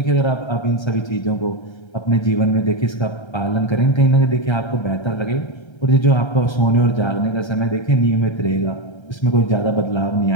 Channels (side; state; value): right; late; 1.3 ms